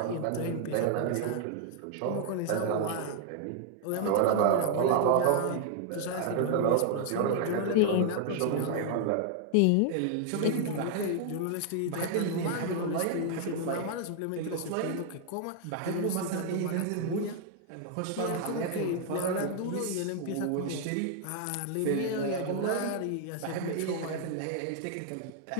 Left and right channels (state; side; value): different; both; correlation 0.00